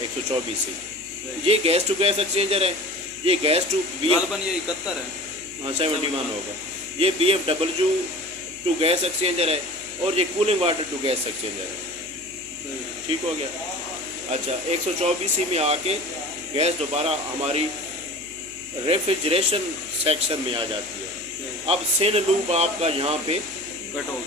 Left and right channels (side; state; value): right; noise; hum, 23 dB below the sound